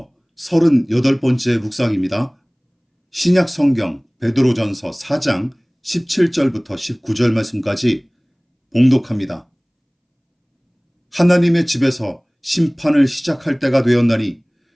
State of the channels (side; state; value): both; identical; correlation 1.00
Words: 38번째 묵상입니다. 신약 성경 베드로전서 4장 17절부터 19절 말씀까지 봉독합니다. 하나님의 집에서 심판을 시작할 때가 되었나니